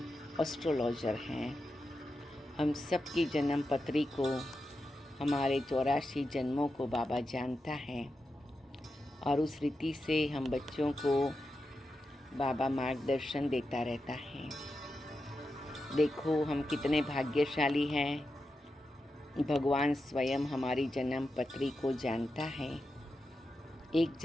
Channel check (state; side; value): normal; both; correlation 0.89